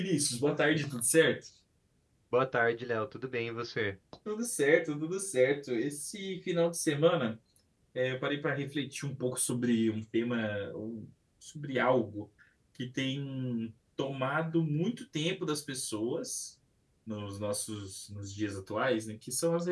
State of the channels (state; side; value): identical; both; correlation 1.00